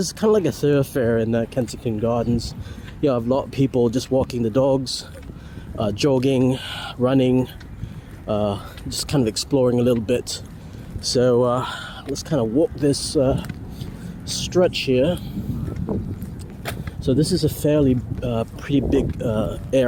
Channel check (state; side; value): identical; both; correlation 1.00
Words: is kind of like a thoroughfare in the Kensington Gardens. You have a lot of people just walking the dogs, jogging, running, just kind of exploring a little bit. So let's kind of walk this stretch here. So this is a fairly pretty big